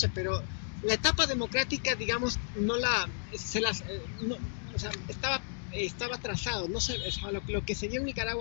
pero la etapa democrática, digamos, estaba trazado. No sé, lo que se dio en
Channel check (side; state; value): right; silent; digital silence